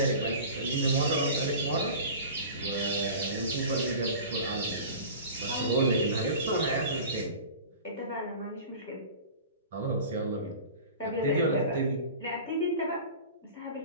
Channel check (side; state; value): both; inverted; correlation -0.37